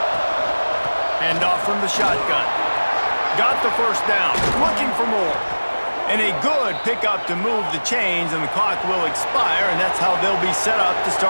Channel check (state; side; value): inverted; both; correlation -1.00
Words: Hand off from the shotgun. Got the first down. Looking for more. And a good pickup to move the chains, and the clock will expire, and that's how they'll be set up to